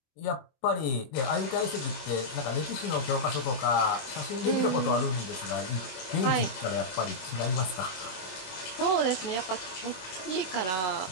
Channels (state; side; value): late; right; 23 ms